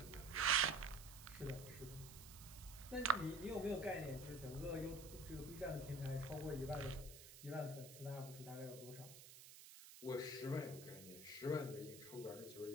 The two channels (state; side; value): noise; right; hiss, 14 dB below the sound